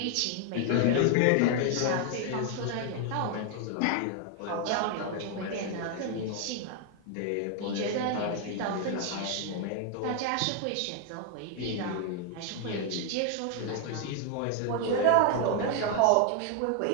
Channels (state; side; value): different; both; correlation 0.00